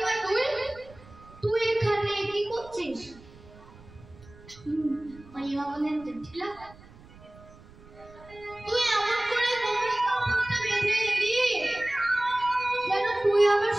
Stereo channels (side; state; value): right; noise; rumble, 22 dB below the sound